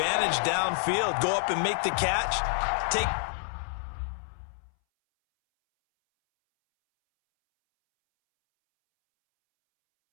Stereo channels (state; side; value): silent; right; 59 dB below the other